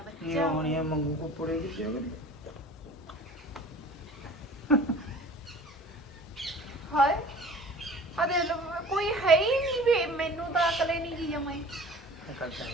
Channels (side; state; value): both; normal; correlation 0.44